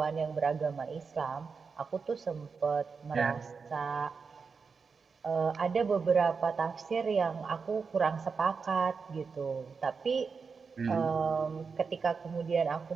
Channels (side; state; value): left; quieter; 5.3 dB